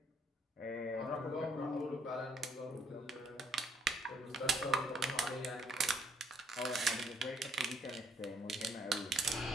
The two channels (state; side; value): normal; both; correlation 0.66